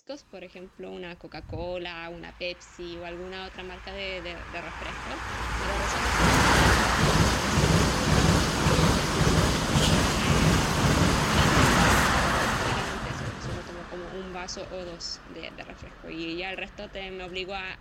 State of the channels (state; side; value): identical; both; correlation 1.00